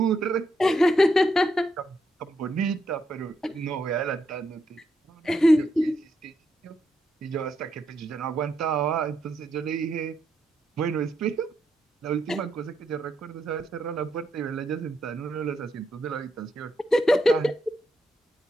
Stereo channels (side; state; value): both; normal; correlation 0.80